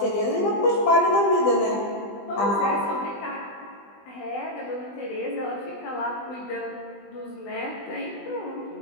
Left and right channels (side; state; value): right; late; 20 ms